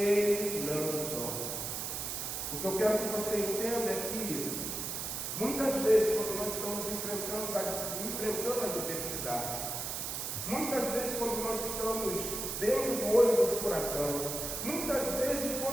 não dorme. O que eu quero que você entenda é que muitas vezes, quando nós estamos enfrentando a adversidade, muitas vezes quando nós estamos dentro do olho do furacão, muitas vezes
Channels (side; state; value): right; noise; hiss, 3 dB below the sound